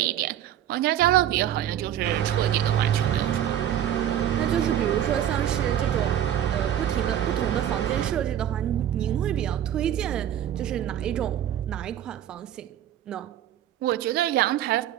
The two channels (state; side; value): quieter; left; 10.9 dB